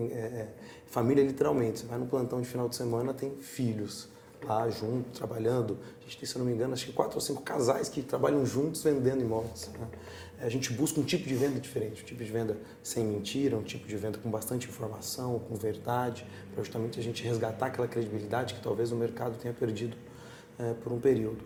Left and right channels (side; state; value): both; identical; correlation 1.00